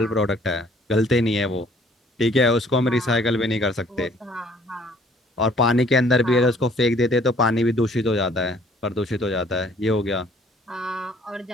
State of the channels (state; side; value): normal; both; correlation 0.58